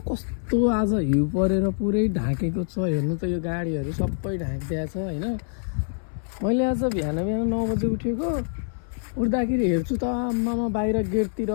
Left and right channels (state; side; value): silent; right; 61 dB below the other